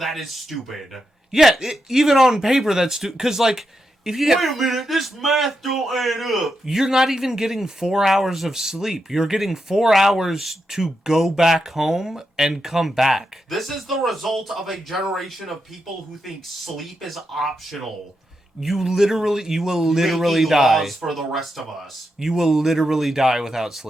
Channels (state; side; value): normal; both; correlation 0.86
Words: is stupid. Yeah, even on paper, that's stupid, because, like, if you Wait a minute, this math don't add up. You're not even getting 4 hours of sleep. You're getting 4 hours to go back home and come back. This is the result of a generation of people who think sleep is optional. You will literally Making die. Laws for the rest of us. You will literally die without